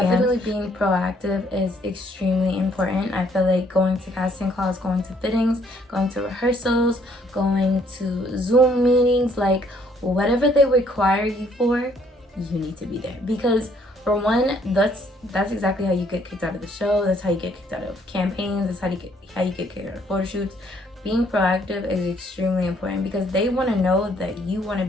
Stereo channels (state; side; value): normal; both; correlation 0.65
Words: Definitely being proactive is extremely important. I feel like going to casting calls, going to fittings, going to rehearsals, going to Zoom meetings, like whatever they require you for, you need to be there. Because for one, that's exactly how you get kicked out of the show. That's how you get kicked out of campaigns. That's how you get kicked out of photo shoots. Being proactive is extremely important, because they want to know that you want to